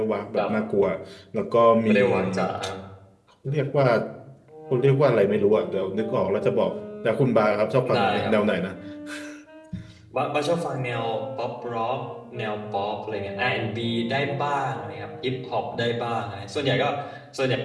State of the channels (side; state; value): both; identical; correlation 1.00